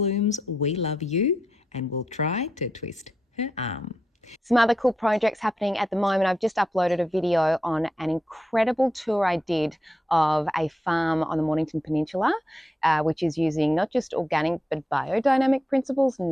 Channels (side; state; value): both; normal; correlation 0.84